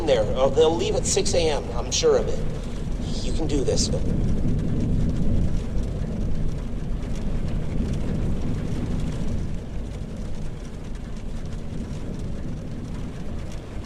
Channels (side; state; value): both; identical; correlation 1.00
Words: there, or they'll leave at 6 a.m., I'm sure of it. You can do this.